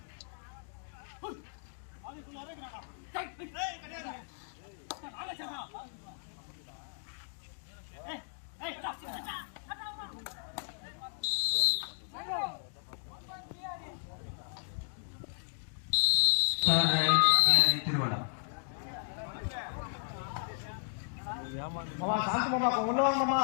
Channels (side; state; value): right; silent; digital silence